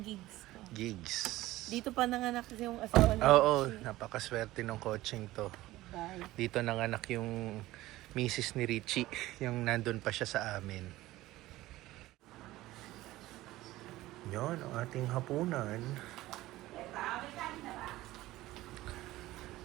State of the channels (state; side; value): quieter; left; 17.0 dB